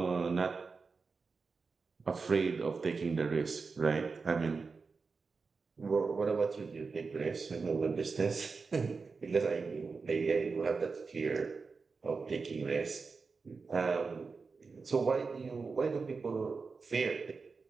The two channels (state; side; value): quieter; left; 4.6 dB